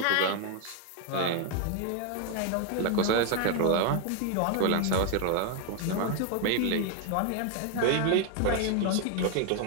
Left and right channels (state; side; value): different; both; correlation 0.01